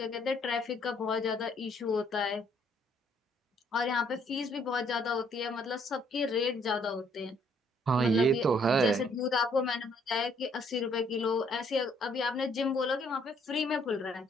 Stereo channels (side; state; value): both; normal; correlation 0.66